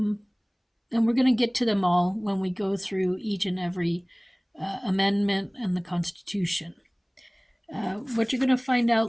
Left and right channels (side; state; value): both; identical; correlation 1.00